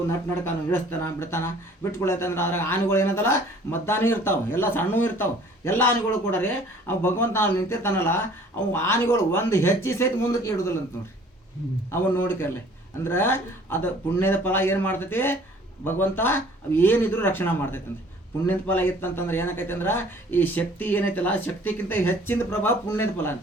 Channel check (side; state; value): both; normal; correlation 0.53